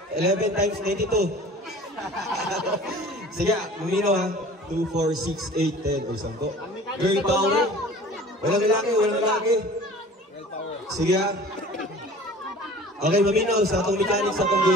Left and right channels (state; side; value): normal; both; correlation 0.45